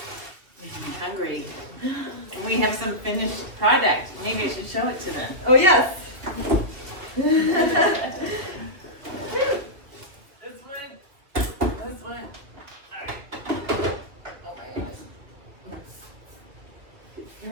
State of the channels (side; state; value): left; late; 2.6 ms